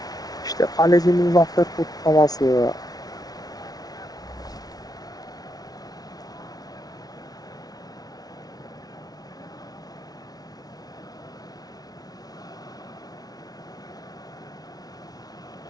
İşte kalecinin zafer kutlaması.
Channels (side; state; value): right; late; 0.19 ms